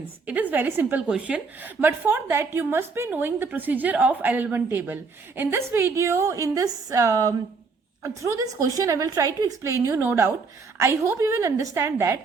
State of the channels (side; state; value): left; quieter; 4.6 dB